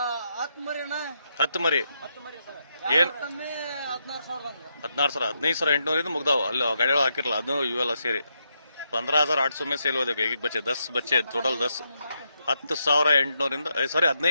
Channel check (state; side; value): inverted; both; correlation -0.81